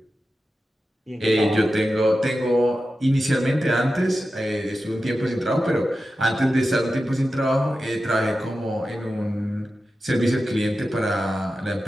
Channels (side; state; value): both; normal; correlation 0.92